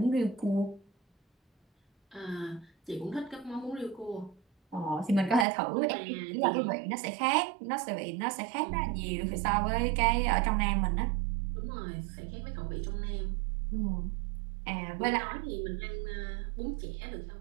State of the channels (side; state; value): left; drops out; at 5.5 s